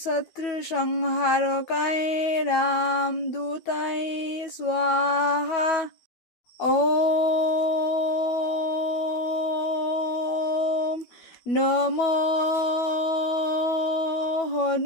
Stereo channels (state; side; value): late; right; 12 ms